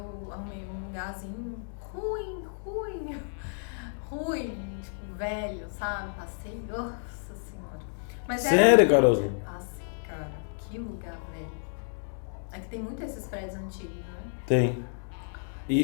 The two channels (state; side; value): silent; right; digital silence